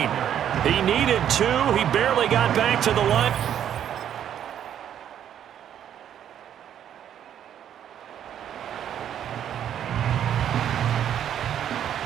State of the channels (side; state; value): left; quieter; 9.9 dB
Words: He needed 2. He barely got back to the line.